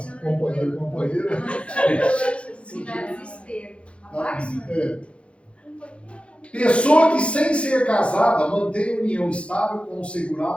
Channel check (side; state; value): right; late; 0.060 ms